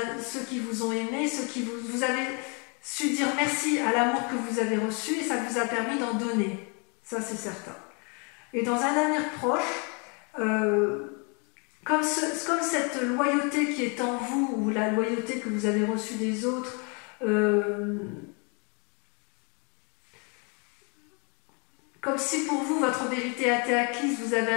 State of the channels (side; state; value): right; quieter; 34.5 dB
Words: ont aimé, vous avez su dire merci à l'amour que vous avez reçu et ça vous a permis d'en donner. Ça, c'est certain. Et dans un avenir proche, comme cette loyauté qui est en vous, ou la loyauté que vous avez reçue des autres, comme si pour vous, votre vérité a été acquise, vous avez